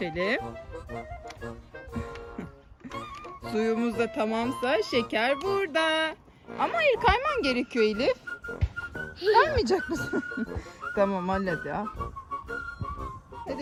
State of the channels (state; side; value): identical; both; correlation 1.00